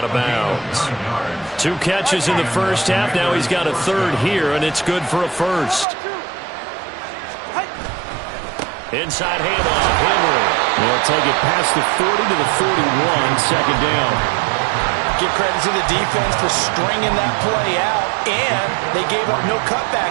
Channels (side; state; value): left; drops out; at 5.9 s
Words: of bounds. 2 catches in the first half. Now he's got a 3rd here, and it's good for a 1st. Inside handoff, Henry. They'll take it past the 40 to the 41, 2nd down. Give credit to the defense for stringing that play out, and they gave up no